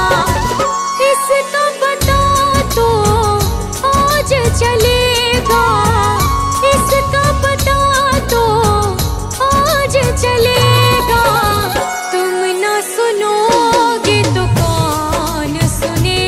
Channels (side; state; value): both; identical; correlation 1.00